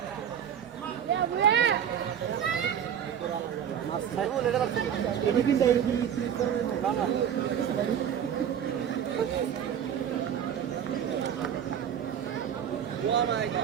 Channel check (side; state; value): left; quieter; 9.0 dB